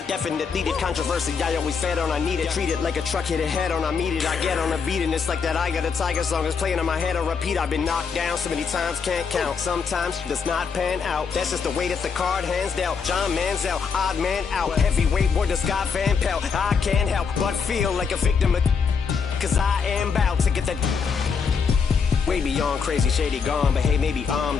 definitely did. Controversy, I always fed on, I need it. Treat it like a truck hit a head on, I meet it. I get on a beat, and it's like that I Got a Tiger song is playing in my head. I repeat, I've been knocked down so many times, can't count. Sometimes it does not pan out. That's just the way that the card hands dealt. John Manziel, odd man out. Heavyweight boy, the Scott Van Pelt. I can't help but feel like a victim of, cause I am bout to get that way beyond crazy, shady, gone. But hey, maybe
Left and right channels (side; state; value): right; quieter; 5.9 dB